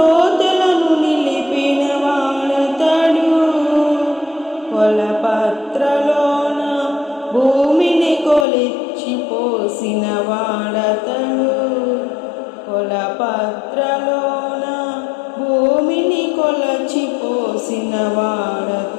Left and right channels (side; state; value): right; drops out; at 8.5 s